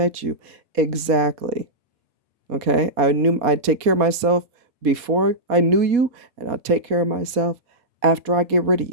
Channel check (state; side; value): late; left; 4.2 ms